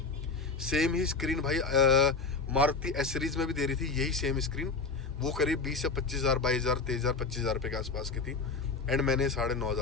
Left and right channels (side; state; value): right; quieter; 4.3 dB